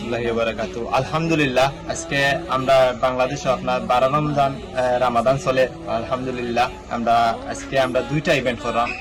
ওয়া বারাকাতুহু। আলহামদুলিল্লাহ, আজকে আমরা বাংলাদেশে আপনার 12 রামাদান চলে। আলহামদুলিল্লাহ, আমরা দুইটা ইভেন্ট করলাম।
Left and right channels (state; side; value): identical; both; correlation 1.00